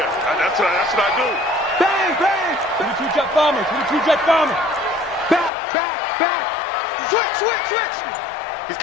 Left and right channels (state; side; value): drops out; right; at 5.5 s